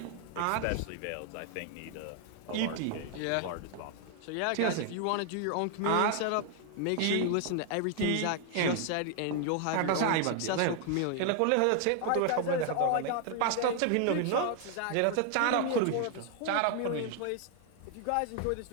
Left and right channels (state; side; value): different; both; correlation 0.00